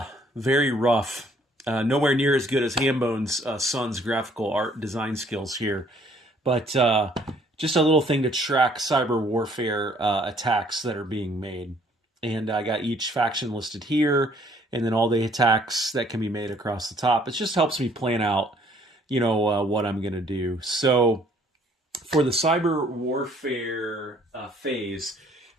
rough, nowhere near as good as Hambone's son's graphical art design skills here, but just a little thing to track cyber warfare attacks that are being made. And I got each faction listed here, and then all the attacks that can be made across the top. It just helps me plan out, what I'm going to do. So for the cyber warfare phase,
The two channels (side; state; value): both; normal; correlation 0.61